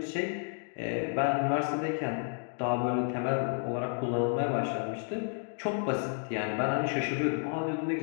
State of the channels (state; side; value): silent; right; 57 dB below the other